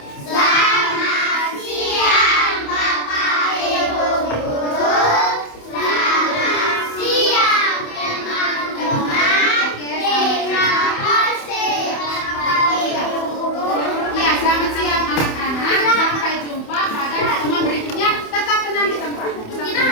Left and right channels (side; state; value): right; late; 27 ms